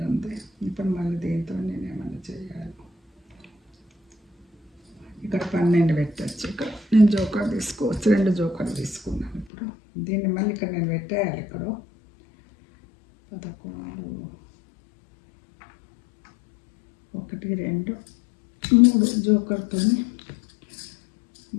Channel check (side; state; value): right; drops out; at 9.5 s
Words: ఉంది ఇప్పుడు మళ్ళీ దీంతో నేను ఏమైనా చేయాలి ఇక్కడ 12 పెట్టచ్చు ఇక్కడ నేను జోకర్ తీసుకోవచ్చు, 2 జోకర్ తీసుకున్నాను. ఇప్పుడు దీన్ని మళ్ళీ ఇక్కడ నేను పెట్టేయాలి. ఇక్కడ 11 1 2 3 జోకర్తో